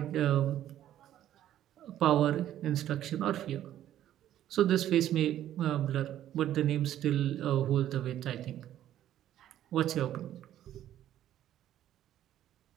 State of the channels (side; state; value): left; quieter; 12.0 dB